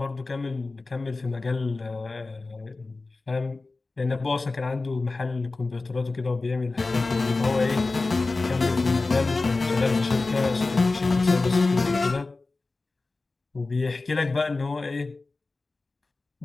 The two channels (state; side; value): quieter; right; 3.5 dB